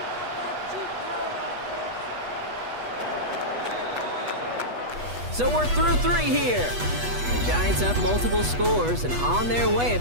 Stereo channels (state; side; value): late; left; 8.2 ms